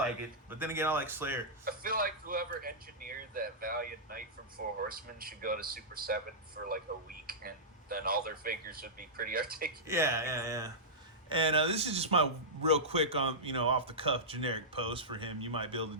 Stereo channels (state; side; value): normal; both; correlation -0.13